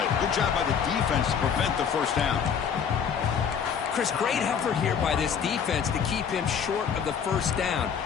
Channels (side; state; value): right; quieter; 7.3 dB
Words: Good job by the defense to prevent the 1st down. Chris, great effort here by this defense to keep him short of the 1st down.